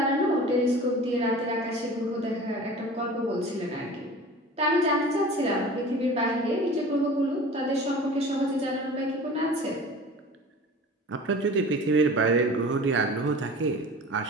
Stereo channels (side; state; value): both; normal; correlation 0.40